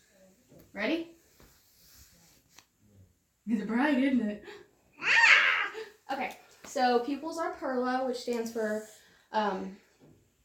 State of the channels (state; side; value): identical; both; correlation 1.00